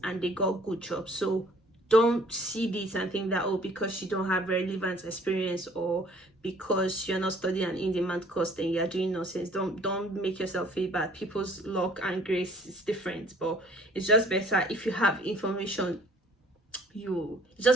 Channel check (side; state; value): both; normal; correlation 0.55